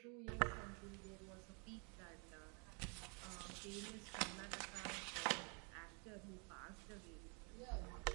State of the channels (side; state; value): left; quieter; 35.4 dB